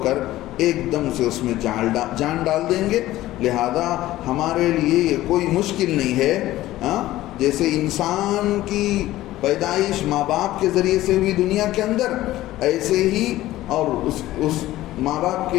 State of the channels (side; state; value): right; quieter; 15.6 dB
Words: کر ایک دم سے اس میں جان ڈال دیں گے. لہذا ہمارے لیے یہ کوئی مشکل نہیں ہے. جیسے انسان کی پیدائش ماں باپ کے ذریعے سے ہوئی دنیا کے اندر، ایسے ہی اور اس ماں باپ